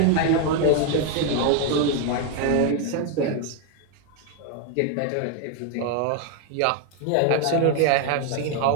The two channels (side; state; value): both; different; correlation 0.01